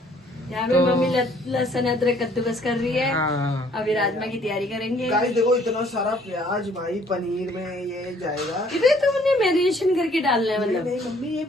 यहाँ पे मम्मी लहसुन अदरक कद्दूकस कर रही है। हाँ अभी राजमा की तैयारी करेंगे। गाइस देखो इतना सारा प्याज भाई पनीर में ये जाएगा। इधर तुमने मैरिनेशन करके डालना है नहीं मतलब? नहीं मम्मी, ये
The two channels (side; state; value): both; normal; correlation 0.61